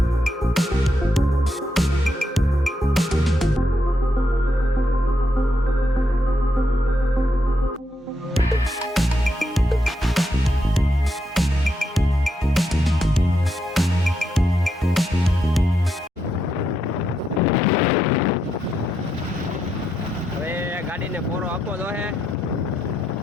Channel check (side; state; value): both; normal; correlation 0.81